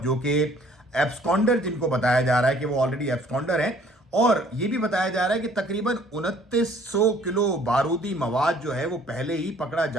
जो कि एब्सकॉन्डर, जिनको बताया जा रहा है कि वो ऑलरेडी एब्सकॉन्डर है, और ये भी बताया जा रहा है कि तकरीबन 2900 किलो बारूदी मवाद जो है वो पहले ही पकड़ा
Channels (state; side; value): normal; both; correlation 0.58